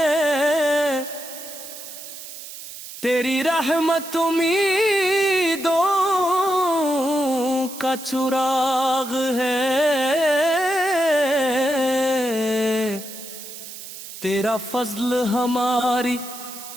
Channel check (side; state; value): right; noise; hiss, 12 dB below the sound